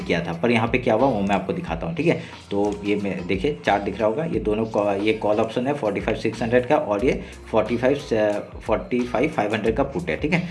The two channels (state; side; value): identical; both; correlation 1.00